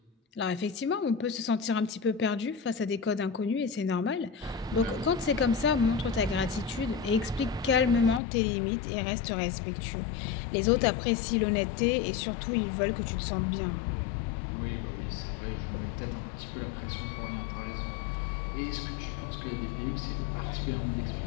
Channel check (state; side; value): drops out; right; at 8.2 s